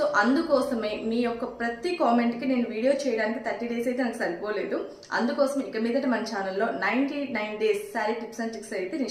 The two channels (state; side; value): identical; both; correlation 1.00